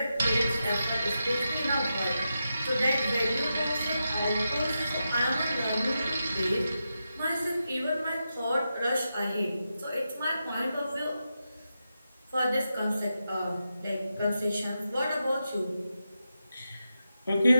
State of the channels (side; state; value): both; inverted; correlation -0.88